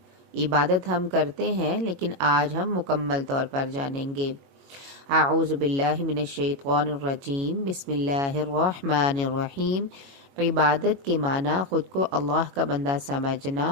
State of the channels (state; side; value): late; left; 22 ms